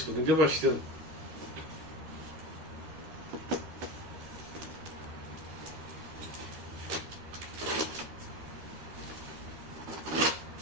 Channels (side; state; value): left; late; 13 ms